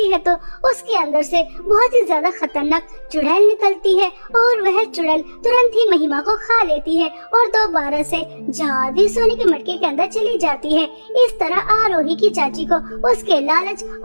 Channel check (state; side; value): inverted; both; correlation -1.00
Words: है तो उसके अंदर से बहुत ही ज्यादा खतरनाक चुड़ैल निकलती है और वह चुड़ैल तुरंत ही महिमा को खा लेती है और दोबारा से जादू सोने के मटके के अंदर चली जाती है। इस तरह आरोही की चाची को उसके लालच